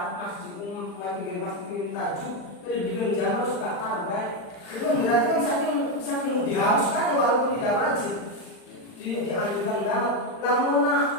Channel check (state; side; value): late; right; 39 ms